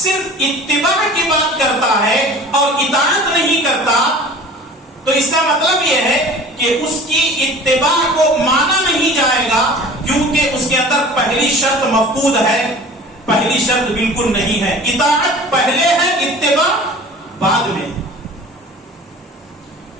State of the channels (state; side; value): normal; both; correlation 0.42